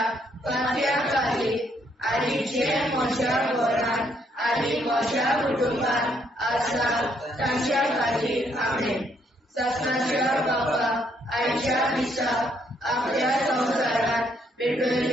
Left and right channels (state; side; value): normal; both; correlation 0.71